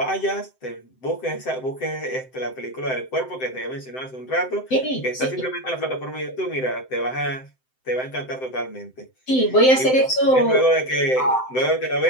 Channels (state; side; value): late; right; 7.8 ms